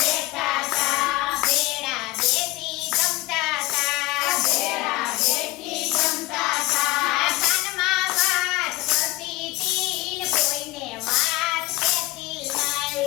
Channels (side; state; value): right; quieter; 19.8 dB